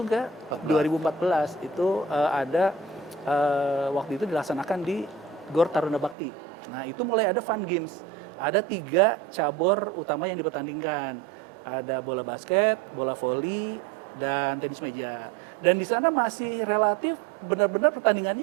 ke 2014 itu ada waktu itu dilaksanakan di Gor Taruna Bakti. Nah itu mulai ada fun games, ada 3 cabur utama yang dipertandingkan, ada bola basket, bola voli, dan tenis meja. Dan di sana masih relatif benar-benar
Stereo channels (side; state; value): left; drops out; at 6.2 s